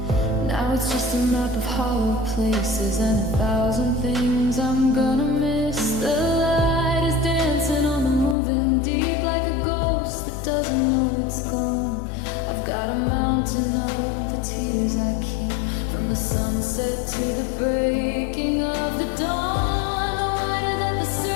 Now it's just a map of hollow places and 1,000 things I'm gonna miss. The light is dancing on the moving deep like a ghost that doesn't know it's gone. I've got a mountain of the tears I keep, from the sunset to the breaking of the dawn. The wider that the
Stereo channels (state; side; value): drops out; right; at 8.3 s